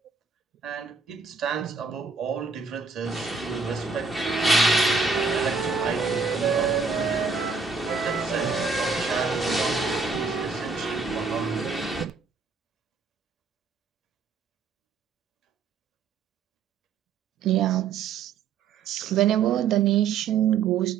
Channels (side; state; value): left; quieter; 5.0 dB